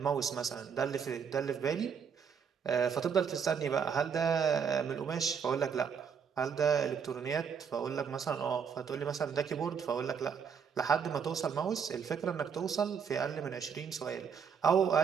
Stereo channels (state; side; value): quieter; left; 6.8 dB